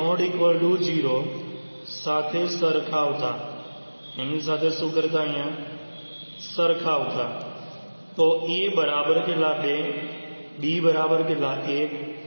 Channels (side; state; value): both; inverted; correlation -1.00